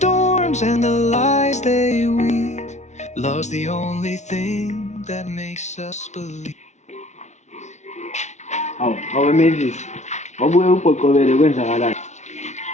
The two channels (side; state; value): right; late; 0.33 ms